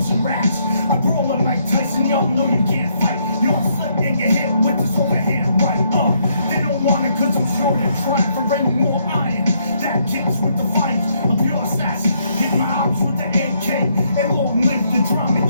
MC raps. I brawl like Mike Tyson, y'all know you can't fight. Y'all slip and get hit with this overhand right. They don't want it cause I'm sure they're trying for any more iron. That kicks with the fight, a pure assassin. Hit my ops with the AK, and long live the drama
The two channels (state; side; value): inverted; both; correlation -0.73